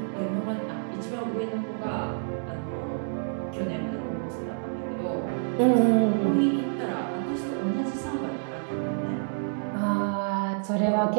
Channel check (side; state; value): left; silent; digital silence